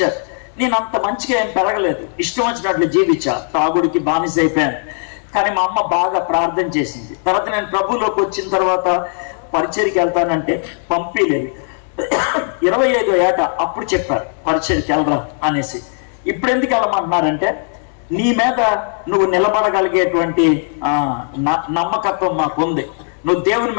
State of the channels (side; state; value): right; silent; 59 dB below the other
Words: నేను అంత మంచిగా ఏం పెరగలేదు, ఇష్టం వచ్చినట్లు జీవించా, తాగుడికి బానిస అయిపోయాను. కానీ మా అమ్మ బాగా ప్రార్థన చేసింది. తర్వాత నేను ప్రభువులోకి వచ్చిన తర్వాత పరిచర్కి వెళ్తానంటే పంపిలేదు. 25వ ఏట అప్పుడు చెప్పారు పరిచర్కి వెళ్ళరా అనేసి. ఇప్పుడు ఎందుకు వెళ్ళమంటున్నారంటే, నీ మీద నువ్వు నిలబడగలిగేటువంటి నమ్మకత్వం మాకు ఉంది, నువ్వు దేవుని